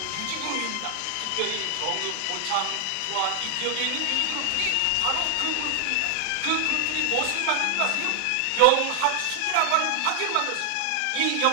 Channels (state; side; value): different; both; correlation 0.00